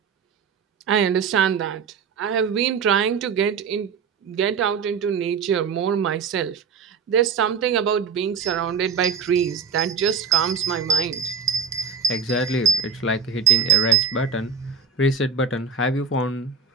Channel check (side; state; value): left; quieter; 5.8 dB